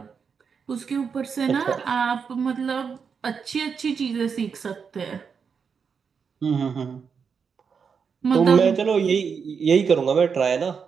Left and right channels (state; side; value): quieter; left; 6.2 dB